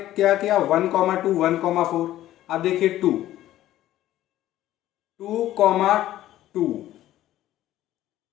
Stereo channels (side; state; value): right; quieter; 13.9 dB